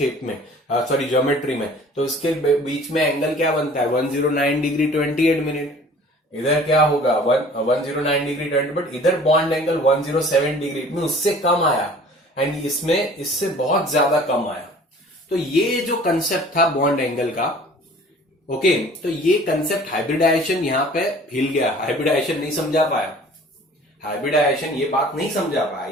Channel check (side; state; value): both; normal; correlation 0.48